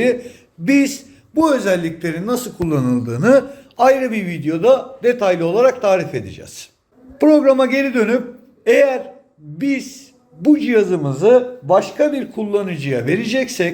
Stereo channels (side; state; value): both; identical; correlation 1.00